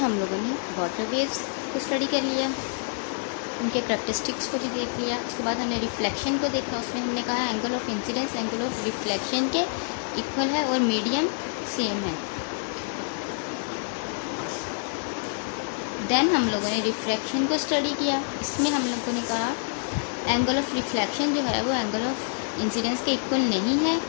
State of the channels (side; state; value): right; silent; digital silence